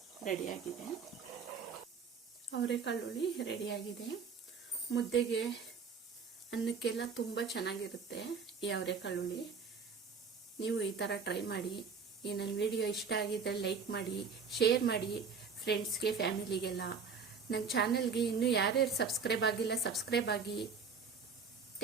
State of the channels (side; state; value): left; quieter; 5.5 dB